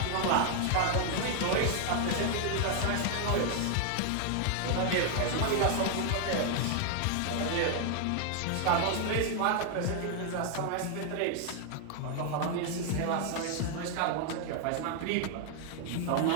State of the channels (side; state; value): both; different; correlation 0.00